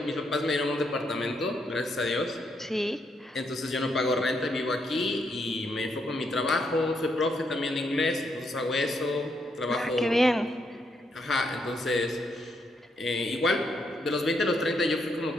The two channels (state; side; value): normal; both; correlation 0.77